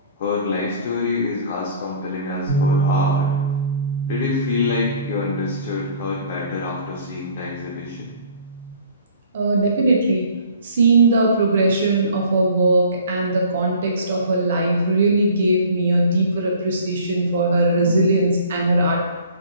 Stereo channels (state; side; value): inverted; both; correlation -0.50